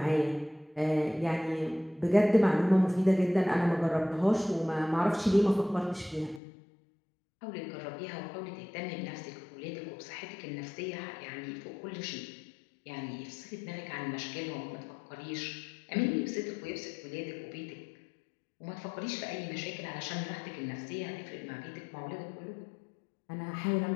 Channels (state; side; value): drops out; right; at 6.4 s